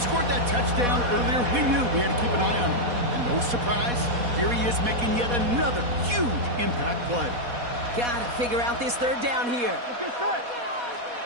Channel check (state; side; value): late; left; 4.1 ms